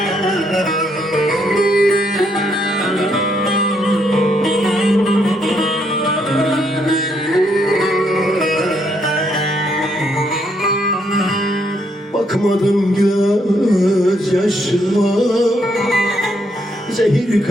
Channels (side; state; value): both; normal; correlation 0.74